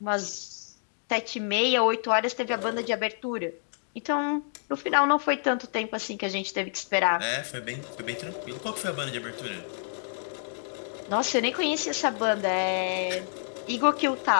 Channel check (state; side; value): silent; right; digital silence